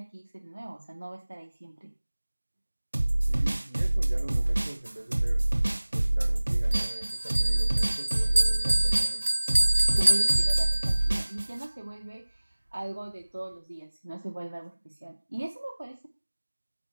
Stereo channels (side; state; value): both; inverted; correlation -1.00